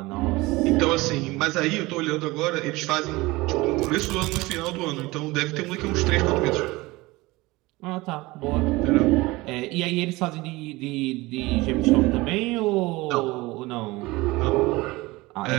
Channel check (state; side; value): quieter; left; 21.3 dB